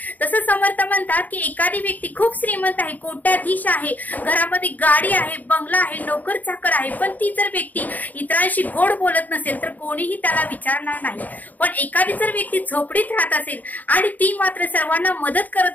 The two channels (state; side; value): late; right; 0.081 ms